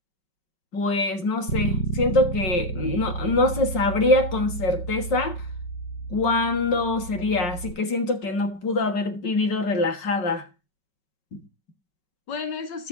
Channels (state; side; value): late; right; 5.3 ms